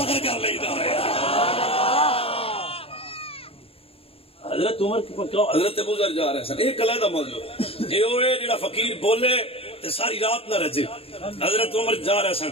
کر لیتا ہے. حضرت عمر حضرت ابو ذر جا رہے سن ایک علیحدہ موضوع یہ ہوئے جڑا فقیر بولے تے ساری رات نہ رجے. حضرت عمر جا رہے سن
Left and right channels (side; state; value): right; late; 0.28 ms